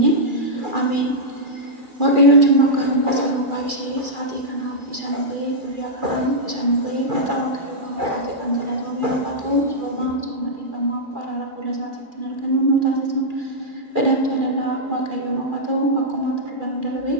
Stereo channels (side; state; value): left; late; 2.4 ms